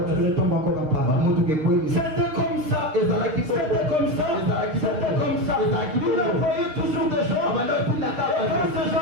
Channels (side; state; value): left; late; 6.5 ms